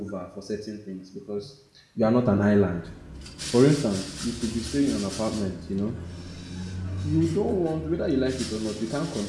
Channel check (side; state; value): both; identical; correlation 1.00